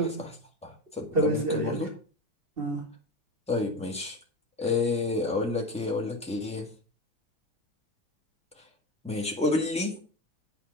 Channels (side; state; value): both; normal; correlation 0.23